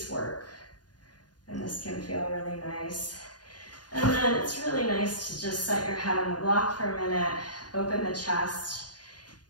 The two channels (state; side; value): late; right; 0.69 ms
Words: work. And this can feel really nice. And then it's really nice to just set your head on the block for a minute, open the chest